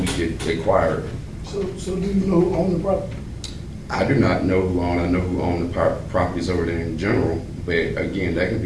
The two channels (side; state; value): both; identical; correlation 1.00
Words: could acquire it. So do you know who owned the property? I do not know who owned, I know who owned the properties over there in general, but again, that can